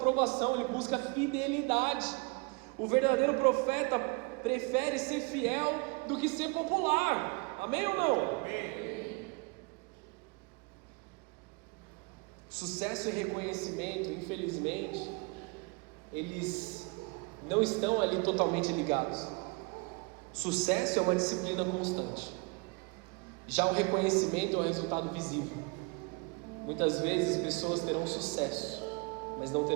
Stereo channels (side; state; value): left; quieter; 29.8 dB